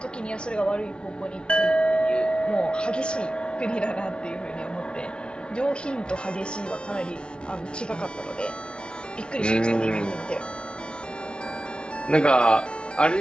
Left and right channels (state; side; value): late; right; 0.056 ms